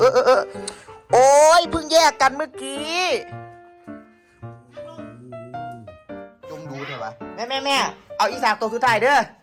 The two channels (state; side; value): identical; both; correlation 1.00